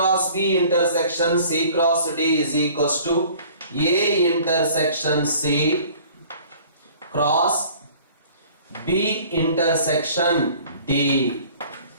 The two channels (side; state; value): both; inverted; correlation -0.51